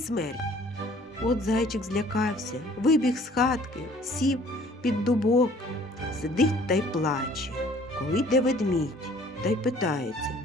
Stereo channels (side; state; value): both; normal; correlation 0.55